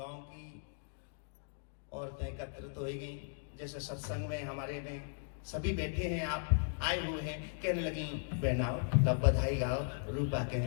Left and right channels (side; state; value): right; silent; digital silence